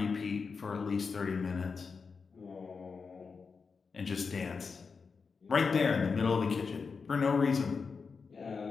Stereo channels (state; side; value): quieter; right; 5.1 dB